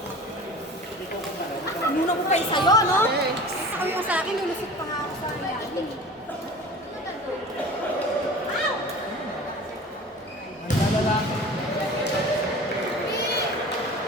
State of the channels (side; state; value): both; normal; correlation 0.39